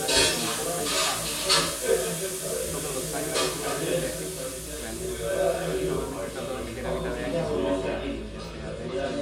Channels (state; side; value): identical; both; correlation 1.00